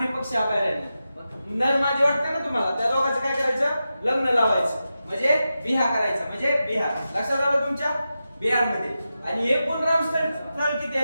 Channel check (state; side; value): inverted; both; correlation -0.91